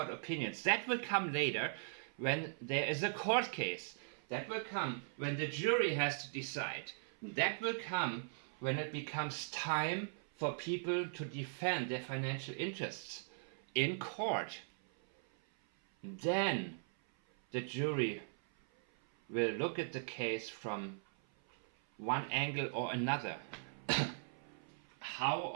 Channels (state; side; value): silent; left; 51 dB below the other